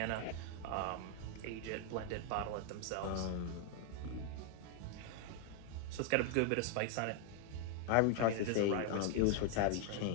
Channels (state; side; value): different; both; correlation 0.00